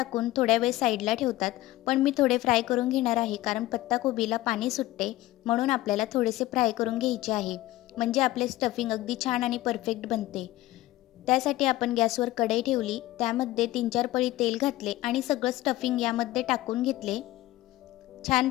थोड्या वेळ साईडला ठेवतात, पण मी थोडे फ्राय करून घेणार आहे, कारण पत्ताकोबीला पाणी सुटते म्हणून आपल्याला थोडेसे फ्राय करून घ्यायचे आहे, म्हणजे आपले स्टफिंग अगदी छान आणि परफेक्ट बनते। त्यासाठी आपण गॅसवर कढई ठेवली, त्यामध्ये 3-4 पळी तेल घातले आणि सगळं स्टफिंग यामध्ये टाकून घेतले। छान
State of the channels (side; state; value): right; quieter; 16.8 dB